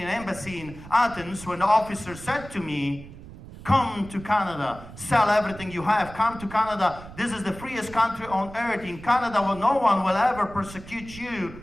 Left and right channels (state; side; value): noise; right; rumble, 16 dB below the sound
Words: Embassy in Athens when the officer said to me, come to Canada, sell everything you have, come to Canada. This is the freest country on earth. In Canada, well, no one will ever persecute you